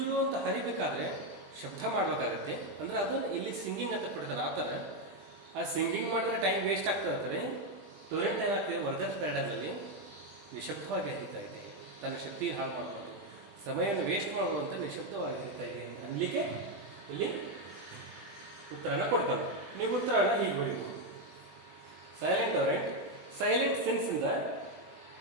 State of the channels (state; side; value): late; left; 20 ms